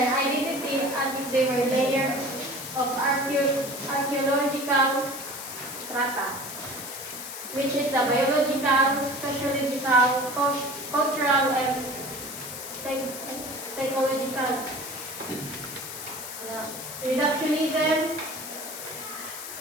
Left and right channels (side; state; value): left; noise; hiss, 9 dB below the sound